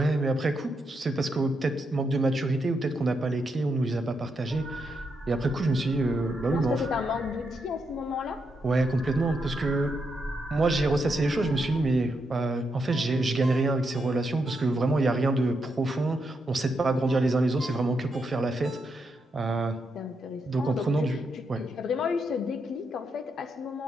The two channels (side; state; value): both; normal; correlation 0.82